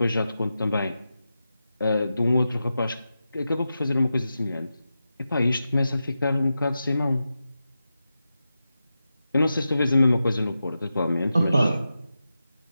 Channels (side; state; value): both; inverted; correlation -0.91